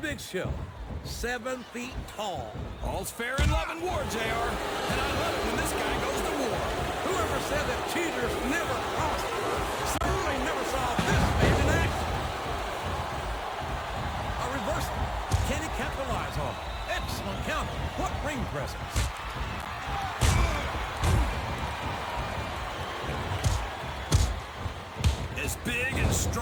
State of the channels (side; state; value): both; identical; correlation 1.00